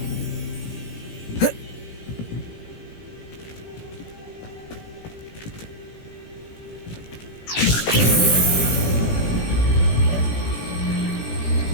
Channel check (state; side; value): late; right; 18 ms